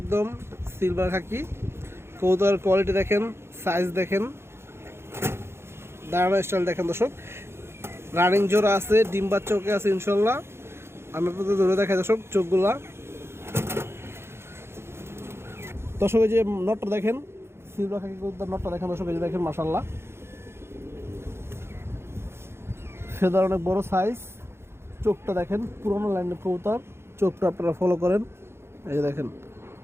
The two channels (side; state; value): left; late; 0.12 ms